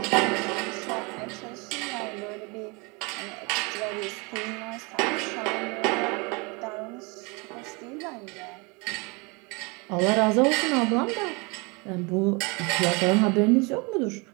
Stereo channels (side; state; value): left; quieter; 29.1 dB